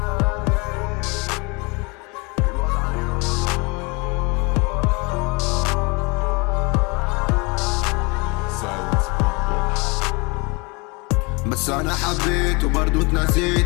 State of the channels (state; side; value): quieter; right; 28.7 dB